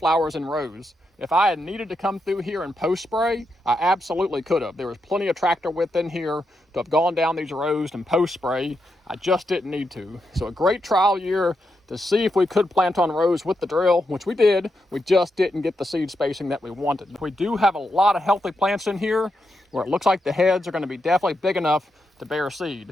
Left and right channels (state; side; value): normal; both; correlation 0.84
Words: in rows. If I had needed to come through here and post spray, I absolutely could have. There was plenty of tractor width in here to have gone down these rows and post spray. I just didn't need to. So a great trial year to see if we could plant on rows with the drill, which we did. We just didn't get the seed spacing that we wanted. We do have a lot of healthy plants in here where it looks like the heads are going to be definitely big enough to bear